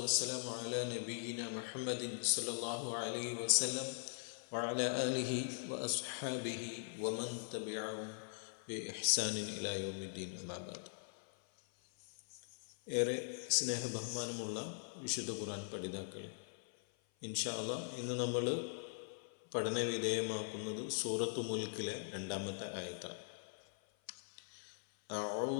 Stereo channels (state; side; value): silent; right; 50 dB below the other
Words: على نبينا محمد صلى الله عليه وسلم وعلى آله وأصحابه ومن تبعهم بإحسان إلى يوم الدين أما بعد. ഏറെ സ്നേഹബഹുമാനമുള്ള വിശുദ്ധ ഖുർആൻ പഠിതാക്കളെ, ഇൻഷാ അല്ലാഹ് ഇന്ന് നമ്മൾ പഠന വിധേയമാക്കുന്നത് സൂറത്തു മുൽക്കിലെ 2-ാമത്തെ ആയത്താണ്.